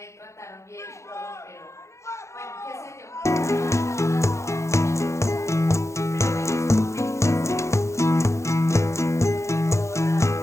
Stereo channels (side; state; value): right; late; 0.14 ms